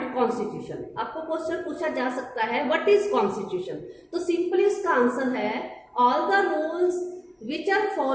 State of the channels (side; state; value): both; identical; correlation 1.00